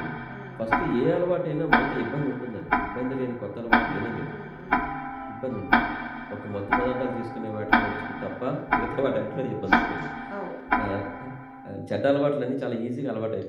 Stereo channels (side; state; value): both; identical; correlation 1.00